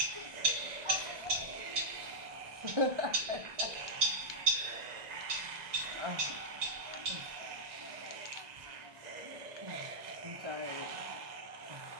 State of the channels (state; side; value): late; left; 1.9 ms